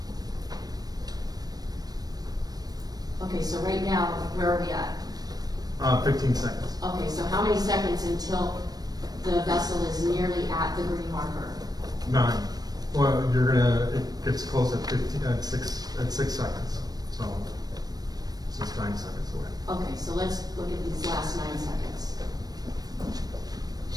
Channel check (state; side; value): late; left; 0.19 ms